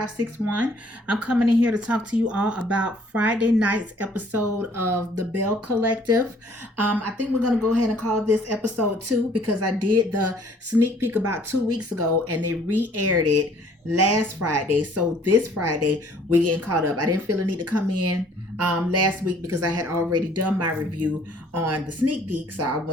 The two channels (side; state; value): both; normal; correlation 0.59